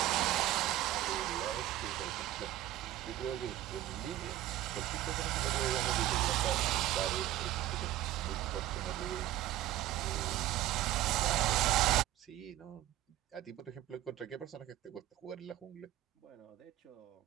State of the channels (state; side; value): quieter; left; 14.1 dB